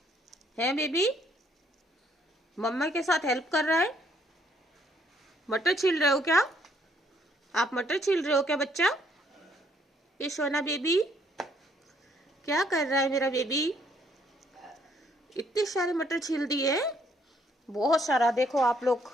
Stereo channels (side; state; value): both; normal; correlation 0.68